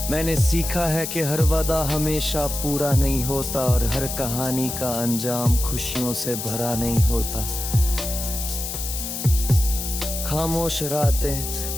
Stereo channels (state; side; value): noise; left; hiss, 5 dB below the sound